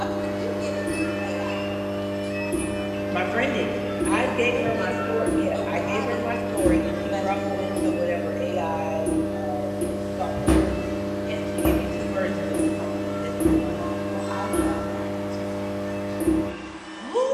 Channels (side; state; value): both; identical; correlation 1.00